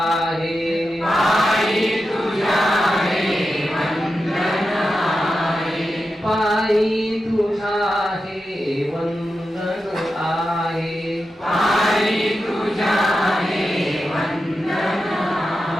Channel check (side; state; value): both; normal; correlation 0.90